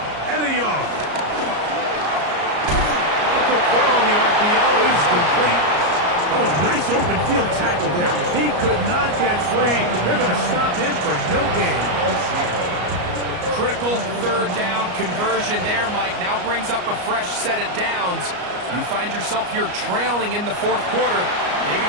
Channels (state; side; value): late; left; 34 ms